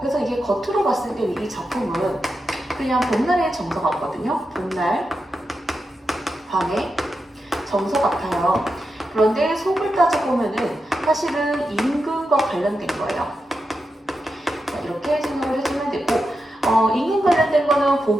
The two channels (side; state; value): both; normal; correlation 0.88